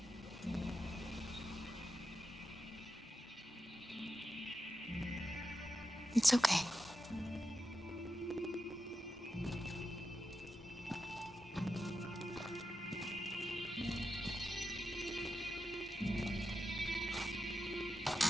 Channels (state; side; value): normal; both; correlation 0.89